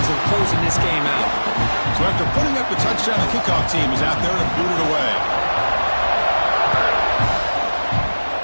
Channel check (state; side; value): inverted; both; correlation -1.00